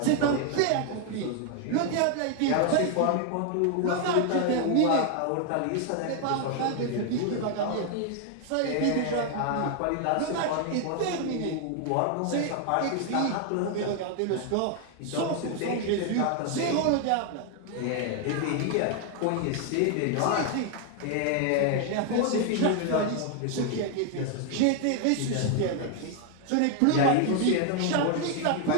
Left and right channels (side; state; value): both; different; correlation 0.00